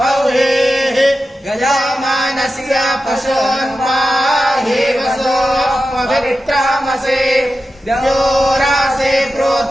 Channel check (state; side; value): normal; both; correlation 0.91